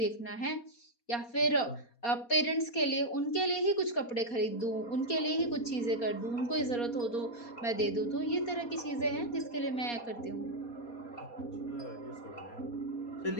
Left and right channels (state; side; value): late; right; 4.2 ms